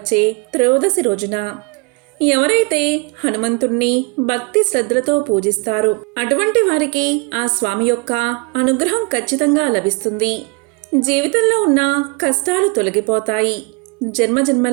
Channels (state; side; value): quieter; left; 29.5 dB